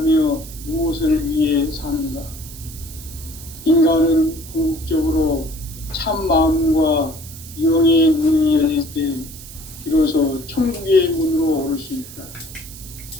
무엇을 위해 사는가? 인간은 궁극적으로 참 마음과 영의 문이 열릴 때 비로소 천국의 문으로 오를 수 있다.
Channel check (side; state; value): right; noise; hiss, 15 dB below the sound